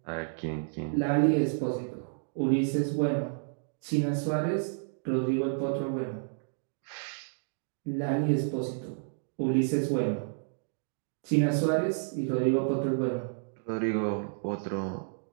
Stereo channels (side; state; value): left; silent; digital silence